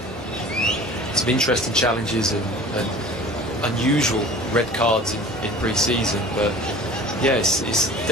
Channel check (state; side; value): normal; both; correlation 0.42